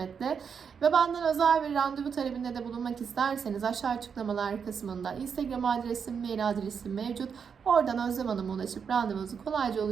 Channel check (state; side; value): quieter; left; 6.6 dB